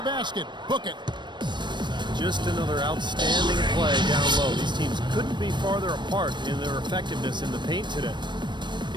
basket. Book it. Just another outstanding play down low. These teams couldn't be farther apart in their effectiveness in the paint today.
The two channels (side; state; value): left; late; 0.22 ms